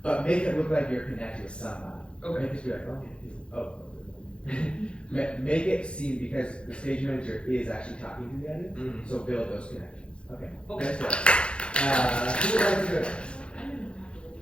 But make it look like you're connected with somebody. Okay. Make it be like, make it seem, because the stage manager is actually talking to the audience, so build those connections. Okay. Okay. Next one. Who would like to go next?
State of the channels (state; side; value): late; right; 0.057 ms